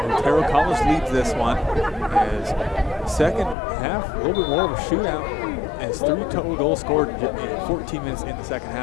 College leads this one. As second half, a little bit more of a shootout. As 3 total goals scored in 14 minutes in the second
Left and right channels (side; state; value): right; drops out; at 3.6 s